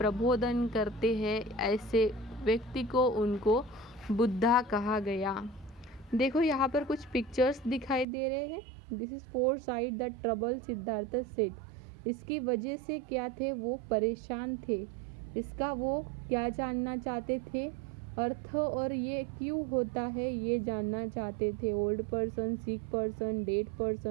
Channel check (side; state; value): left; drops out; at 8.1 s